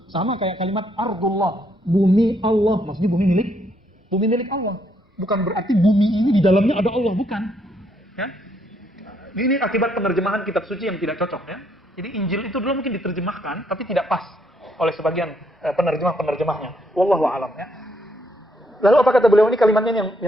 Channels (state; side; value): normal; both; correlation 0.72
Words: Sama kayak kalimat ardullah, bumi Allah. Maksudnya bumi milik Allah. Bukan berarti bumi ini di dalamnya ada Allah, bukan. Ya? Ini akibat penerjemahan kitab suci yang tidak cocok ya. Jadi Injil itu dulu mungkin diterjemahkan tapi tidak pas oleh sebagian penerjemahnya. Wallahu a'lam ya. Lalu apa kata beliau ini kalimatnya